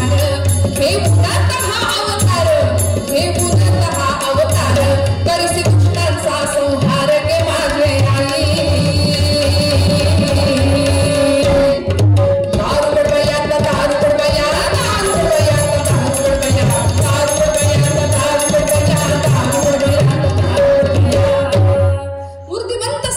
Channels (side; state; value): both; identical; correlation 1.00